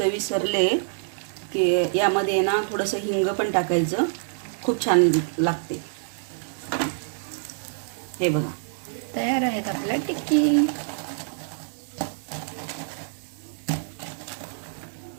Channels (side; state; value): left; silent; digital silence